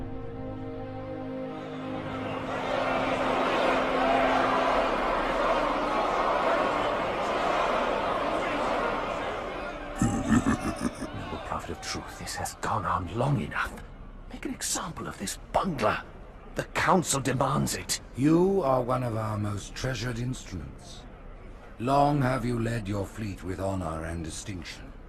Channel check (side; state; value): both; identical; correlation 1.00